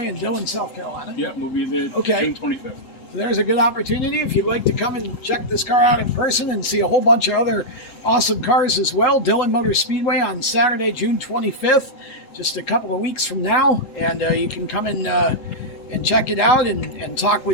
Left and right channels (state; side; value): late; right; 3.8 ms